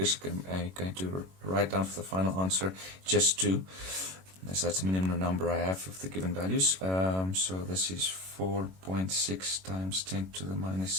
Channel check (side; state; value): left; late; 21 ms